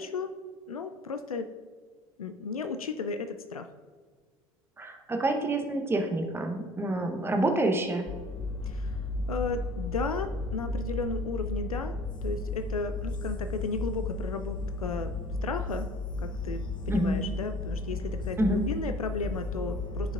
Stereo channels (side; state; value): both; normal; correlation 0.48